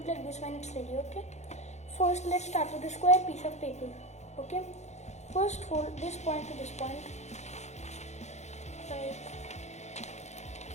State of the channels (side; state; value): right; late; 0.33 ms